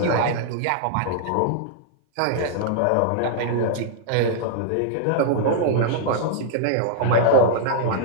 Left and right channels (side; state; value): both; different; correlation -0.01